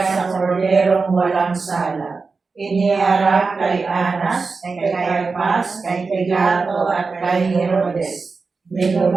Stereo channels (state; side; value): quieter; left; 4.4 dB